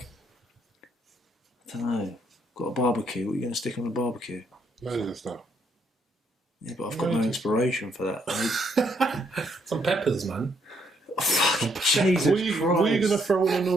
I don't know. Got a barbecue. What are you going to stick on the barbecue? Loads of stuff. Yeah, but I've got no inspiration for that. Some peppers, man. Jesus What are you going to throw on a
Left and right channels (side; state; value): both; normal; correlation 0.72